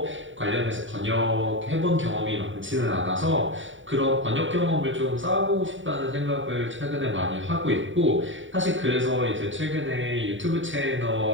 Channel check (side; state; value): left; late; 0.56 ms